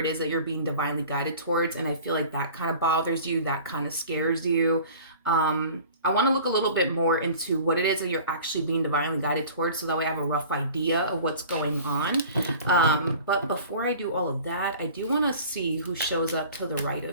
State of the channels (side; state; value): both; inverted; correlation -0.43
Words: is that you're being divinely guided towards. And I feel like that kind of bothers you, that kind of scares you. I want to look a little bit more into what it is that you're actually being divinely guided towards, so that way I have a rough idea of what's going on. But before I do all of that, I do want to see who shows up to the right